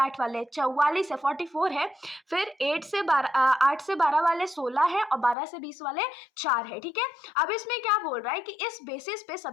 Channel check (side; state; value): right; drops out; at 5.4 s